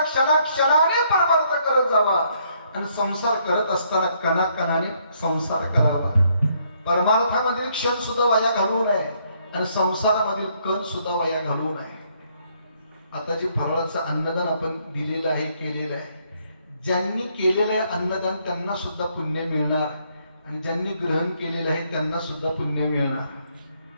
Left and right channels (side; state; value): both; inverted; correlation -0.70